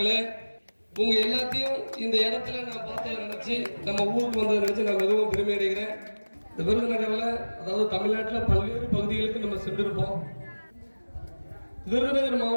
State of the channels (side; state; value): both; inverted; correlation -1.00